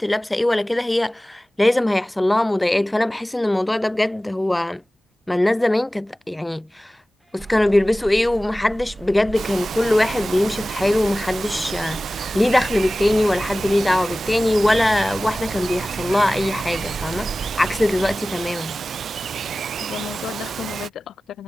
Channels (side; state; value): both; normal; correlation 0.97